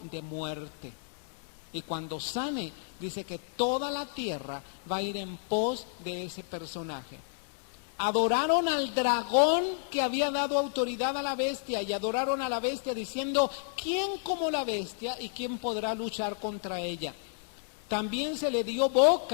de muerte. Y cuando sane, dice que toda la tierra va a ir en pos de ese personaje. Adoraron al dragón que había dado autoridad a la bestia, y adoraron a la bestia diciendo: ¿quién como la bestia y quién podrá luchar contra ella? También se le dio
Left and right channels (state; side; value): silent; right; digital silence